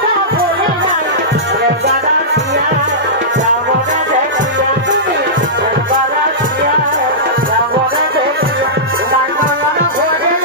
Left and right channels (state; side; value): normal; both; correlation -0.16